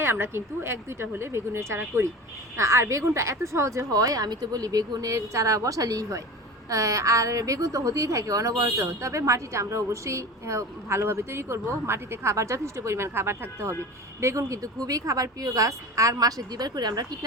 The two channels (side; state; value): both; normal; correlation 0.33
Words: আমরা কিন্তু এক দুইটা হলে বেগুনের চারা করি। আর বেগুনটা এত সহজে হয়, আমি তো বলি বেগুনের চারা বসালেই হয়। আর বেগুন তো হতেই থাকে অনবরত। তবে মাটিটা আমরা অবশ্যই ভালোভাবে তৈরি করব। মাটিতে খাবার, যথেষ্ট পরিমাণ খাবার থাকতে হবে। বেগুন কিন্তু খুবই খাবার প্রিয় গাছ। আর মাসে 2বার করে আমরা